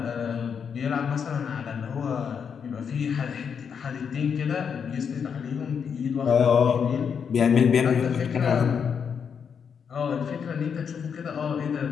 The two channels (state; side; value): quieter; right; 6.9 dB